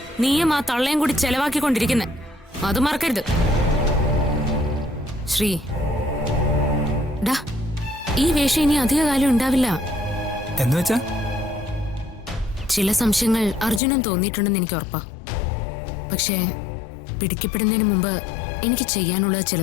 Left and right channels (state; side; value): drops out; right; at 13.8 s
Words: നീയും ആ തള്ളയും കൂടി ചെലവാക്കിക്കൊണ്ടിരിക്കുന്നെ. അത് മറക്കരുത്. ശ്രീ, ഡാ, ഈ വേഷം ഇനി അധിക കാലം ഉണ്ടാവില്ല. എന്ന് വെച്ചാ? ചില സംശയങ്ങൾ അർജുനൻ തോന്നിയിട്ടുണ്ടെന്ന് എനിക്ക് ഉറപ്പാ. പക്ഷേ പിടിക്കപ്പെടുന്നതിന് മുമ്പ് എനിക്ക് ചെയ്യാനുള്ളത്